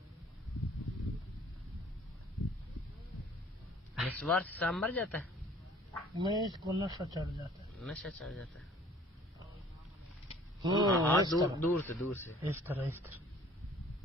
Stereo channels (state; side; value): normal; both; correlation 0.52